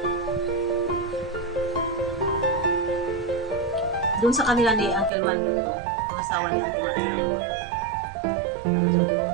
Doon sa kanila ni Uncle Mando to, mga asawa ni Uncle Mando. Ano doon?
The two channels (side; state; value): left; drops out; at 5.1 s